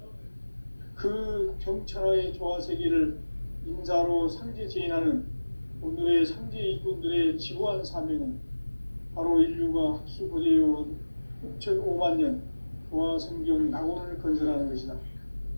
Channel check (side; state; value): both; inverted; correlation -1.00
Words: 그 정천하의 조화세계를 인사로 상제 제인하는 오늘의 상제 일꾼들의 지구한 사명은 바로 인류가 학수고대해온 6,5만 년 조화성경 낙원을 건설하는 것이다.